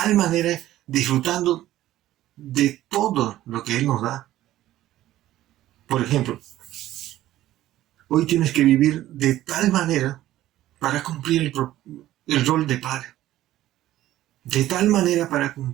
manera, disfrutando de todo lo que Él nos da. Por ejemplo, hoy tienes que vivir de tal manera para cumplir el rol de padre. De tal manera para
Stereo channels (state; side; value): quieter; left; 14.3 dB